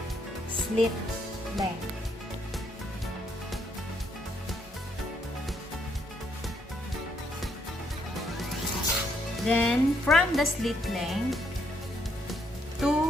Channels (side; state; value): both; normal; correlation 0.72